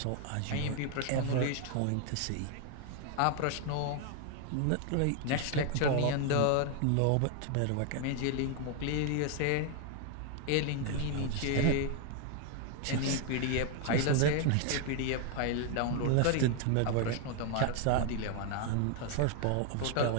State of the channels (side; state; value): both; different; correlation 0.00